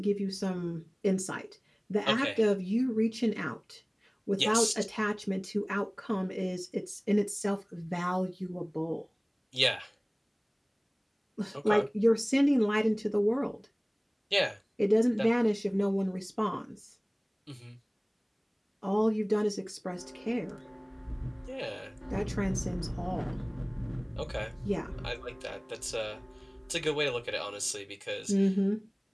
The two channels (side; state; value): both; identical; correlation 1.00